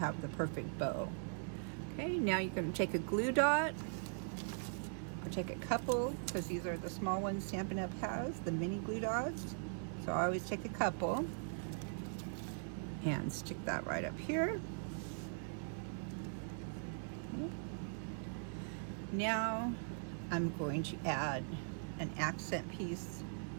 the perfect bow. Okay, now you're going to take a glue dot. I'll take a couple, because these are the small ones Stampin' Up has, the mini glue dots. So I always take a couple and stick that right up here. Okay. Now I'm going to add an accent piece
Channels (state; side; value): silent; left; digital silence